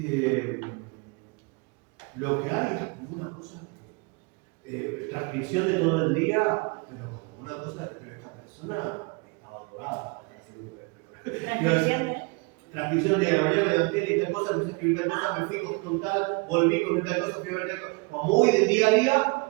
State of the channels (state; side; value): quieter; left; 30.1 dB